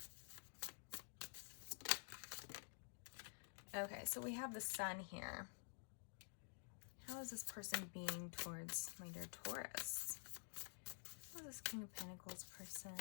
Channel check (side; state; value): right; silent; digital silence